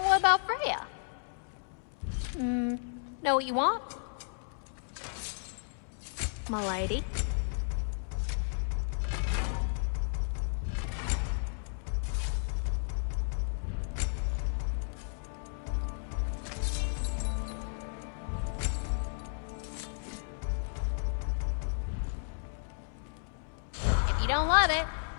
what about Freya? Know what you want? My lady? don't love it,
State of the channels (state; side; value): silent; right; digital silence